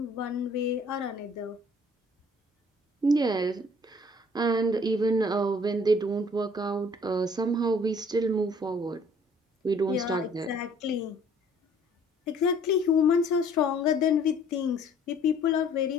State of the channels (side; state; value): both; normal; correlation 0.56